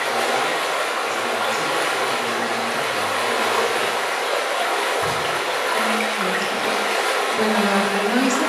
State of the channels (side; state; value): both; identical; correlation 1.00